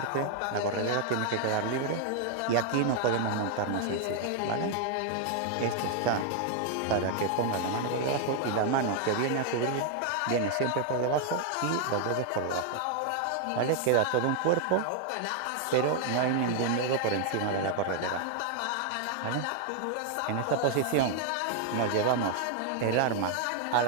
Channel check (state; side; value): different; both; correlation 0.00